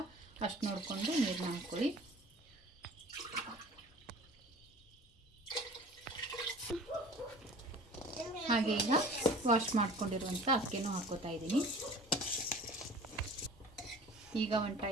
ಅಷ್ಟು ನೋಡಿಕೊಂಡು ನೀರನ್ನ ಹಾಕ್ಕೊಳ್ಳಿ. ಹಾಗೆ ಈಗ ವಾಶ್ ಮಾಡ್ಕೊಂಡಿರುವಂಥ ಅಕ್ಕಿನೂ ಹಾಕೋತಾ ಇದ್ದೀನಿ. ಈಗ ಒಂದು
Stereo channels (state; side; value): normal; both; correlation 0.44